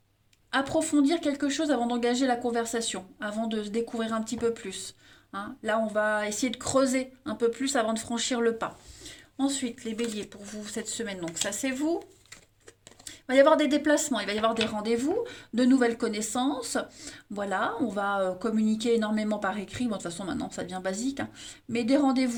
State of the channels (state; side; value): identical; both; correlation 1.00